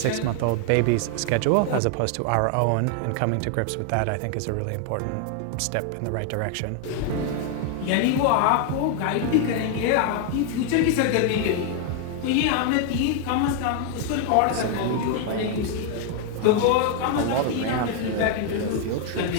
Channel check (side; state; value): both; different; correlation 0.00